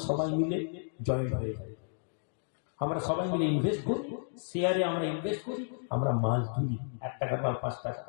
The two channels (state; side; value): silent; right; digital silence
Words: সবাই মিলে জয়েন্ট হয়ে যাই, আমরা সবাই মিলে ইনভেস্ট করি, শেয়ারে আমরা ইনভেস্ট করি, আমরা মাল কিনি 1 টাকার মাল 5 টাকা।